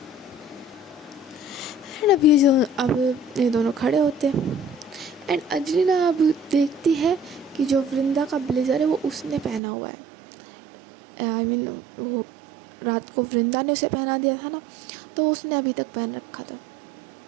एंड अब ये दोनों खड़े होते हैं एंड अंजलि ना अब देखती है कि जो वृंदा का ब्लेज़र है वो उसने पहना हुआ है। आई मीन वो रात को वृंदा ने उसे पहना दिया था ना, तो उसने अभी तक पहन रखा था।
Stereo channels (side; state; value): left; drops out; at 9.6 s